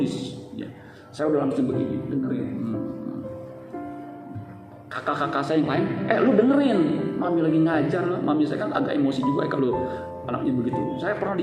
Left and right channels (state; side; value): identical; both; correlation 1.00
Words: Ya. Saya udah langsung begini, dengerin. Kakak-kakak saya yang lain, lu dengerin, mami lagi ngajar. Mami saya kan agak emosi juga kalau anaknya begitu. Saya pernah